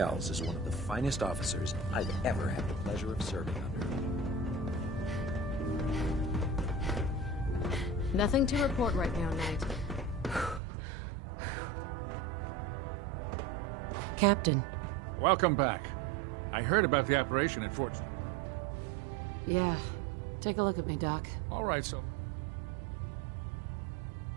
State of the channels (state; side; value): drops out; left; at 10.6 s